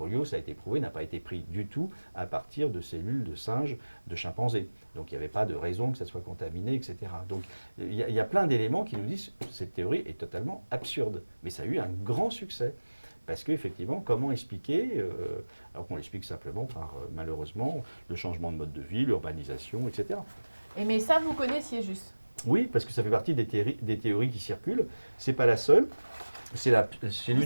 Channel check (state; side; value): inverted; both; correlation -1.00